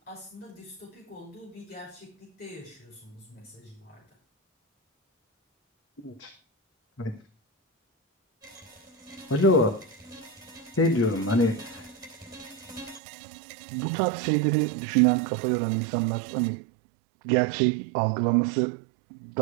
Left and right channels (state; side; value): drops out; left; at 13.0 s